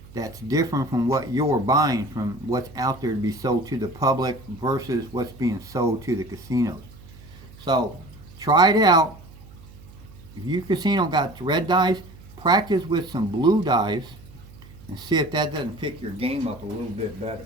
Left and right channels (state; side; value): noise; right; hum, 20 dB below the sound